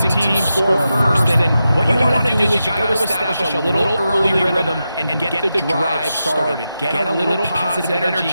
team score first, and what you want to do is you got to establish a little early rhythm and get the drive started. Get a little positive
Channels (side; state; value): both; inverted; correlation -0.89